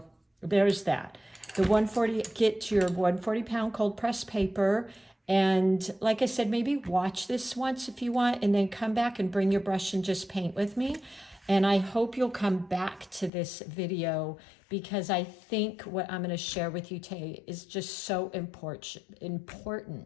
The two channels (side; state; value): right; drops out; at 13.3 s